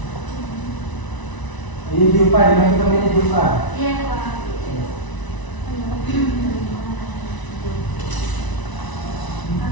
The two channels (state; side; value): late; right; 1.0 ms